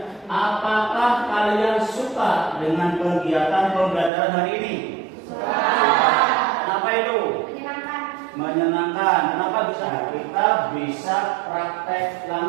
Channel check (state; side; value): drops out; left; at 4.1 s